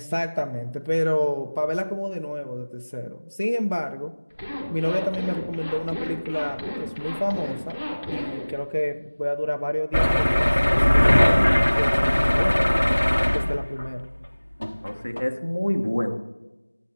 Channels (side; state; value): both; inverted; correlation -1.00